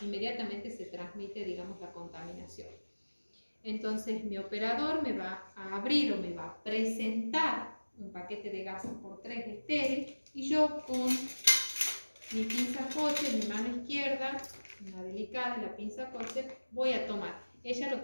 se transmite, digamos, la contaminación. Entonces mi operador me va a abrir o me va a presentar un paquete de gasas por 3 estéril, y yo con mi pinza Kocher, mi mano izquierda, una delicada, la pinza Kocher, voy a tomar. Ella lo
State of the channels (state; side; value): inverted; both; correlation -1.00